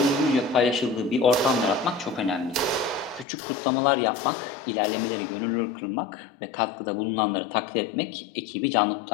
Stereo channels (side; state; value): right; drops out; at 3.2 s